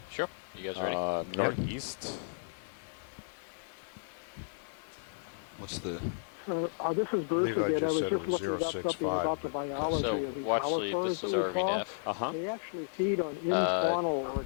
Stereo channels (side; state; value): right; silent; digital silence